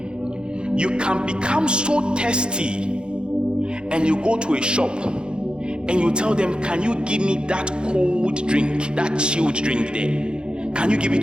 You can become so thirsty and you go to a shop and you tell them, can you give me that cold drink, that chilled drink there? Can you give it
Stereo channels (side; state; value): left; late; 0.050 ms